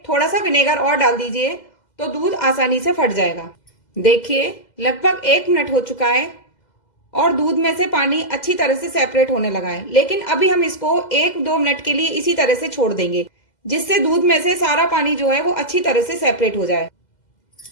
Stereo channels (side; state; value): right; late; 2.0 ms